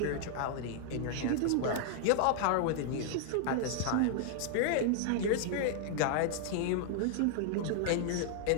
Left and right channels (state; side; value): different; both; correlation 0.00